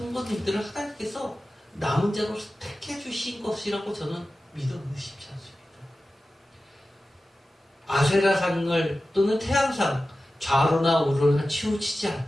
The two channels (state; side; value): normal; both; correlation 0.95